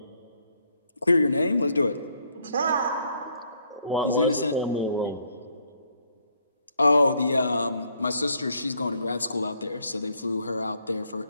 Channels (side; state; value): both; inverted; correlation -0.69